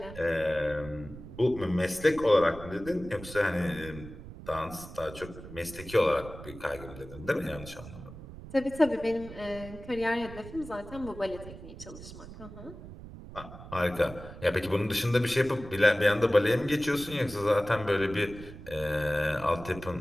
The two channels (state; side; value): noise; right; rumble, 14 dB below the sound